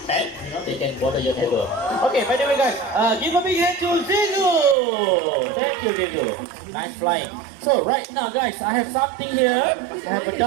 pet. You know, they can bother your neighbor. Okay, by the way, guys, give a big hand to Zizu. Thank you, Zizu. Nice flying. So right now, guys, I have something here. I have a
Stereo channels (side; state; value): left; drops out; at 4.8 s